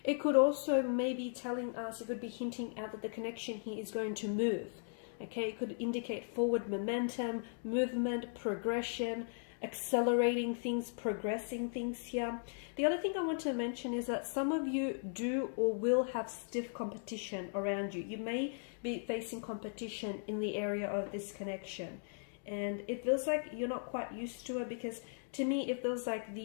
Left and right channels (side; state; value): right; silent; digital silence